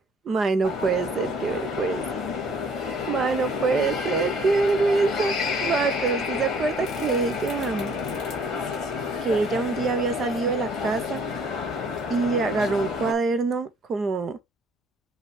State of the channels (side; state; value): both; normal; correlation 0.58